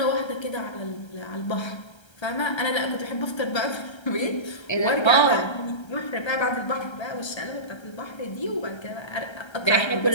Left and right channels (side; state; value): right; late; 1.3 ms